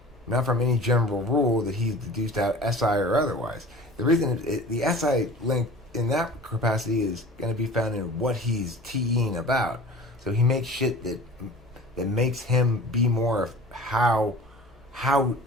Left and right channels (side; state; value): both; normal; correlation 0.41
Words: general rule that he's deduced out, SI or otherwise. The reason the SI link in that capacity is going to be found in what he's TEing about. So he makes shit that makes him be more of how